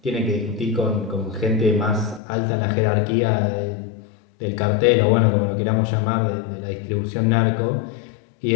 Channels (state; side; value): drops out; right; at 2.2 s